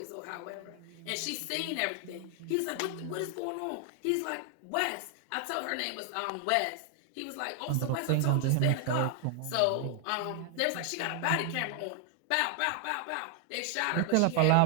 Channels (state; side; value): different; both; correlation 0.00